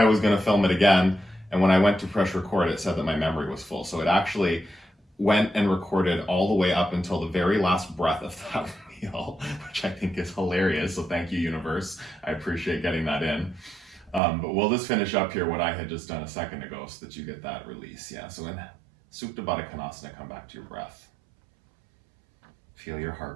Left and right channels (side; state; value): left; drops out; at 14.2 s